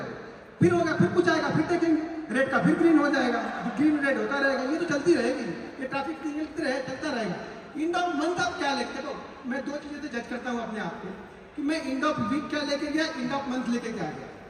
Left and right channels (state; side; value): identical; both; correlation 1.00